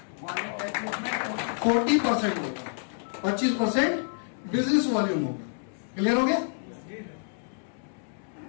40% होगा, 25% बिजनेस वॉल्यूम होगा। क्लियर हो गया?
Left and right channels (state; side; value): silent; right; digital silence